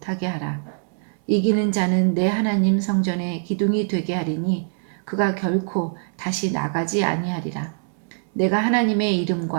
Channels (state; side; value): silent; left; 63 dB below the other